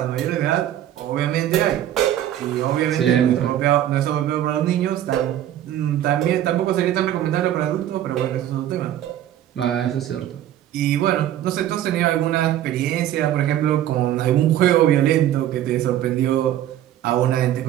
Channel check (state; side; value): quieter; left; 11.9 dB